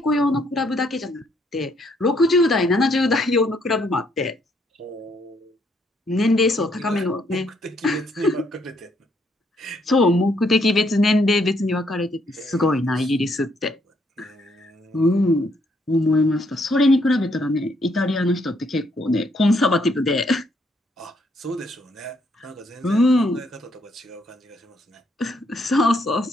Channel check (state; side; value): normal; both; correlation 0.71